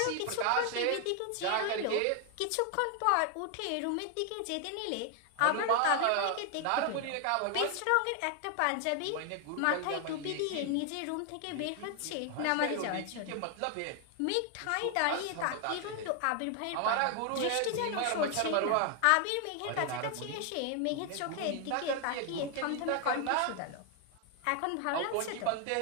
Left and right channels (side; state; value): both; different; correlation 0.00